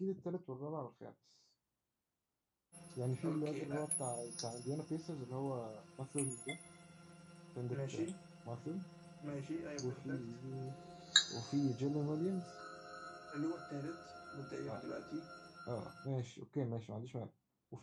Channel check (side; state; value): both; identical; correlation 1.00